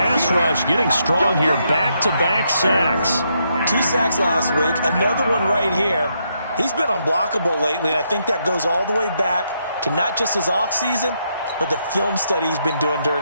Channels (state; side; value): inverted; both; correlation -0.78